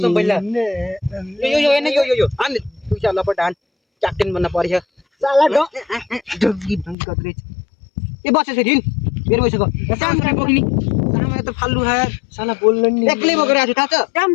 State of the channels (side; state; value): right; drops out; at 7.0 s